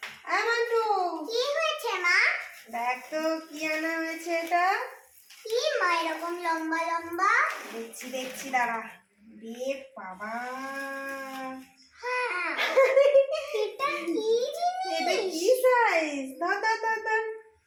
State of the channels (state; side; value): identical; both; correlation 1.00